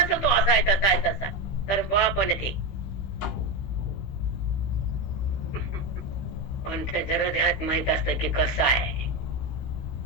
तो असा आहे तसा आहे तसा, तर बापन ते पण त्याच्या हृदयात माहित असतं की कसं आहे.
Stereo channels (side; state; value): right; late; 16 ms